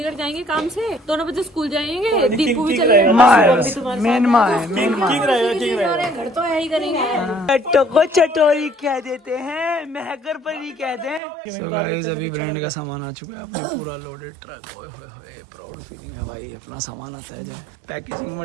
जाएंगे काम से, दोनों बच्चे स्कूल जाएंगे, दीपू भी चले जाएंगे। माँ है बस, मेन माँ है, मेन माँ। घर तो यही करेंगे। को चटोरी कह देते हैं, महकर परी कहते हैं। सो गाइस अभी ब्रांड का सामान आ चुका है, अपने पूरा लोडेड ट्रक। ओए होए होए, प्राउड फीलिंग है भाई, अपना सामान आता है जब। Packaging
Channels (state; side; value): drops out; left; at 11.2 s